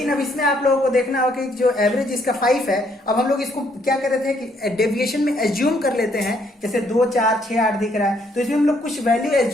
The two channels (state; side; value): normal; both; correlation 0.69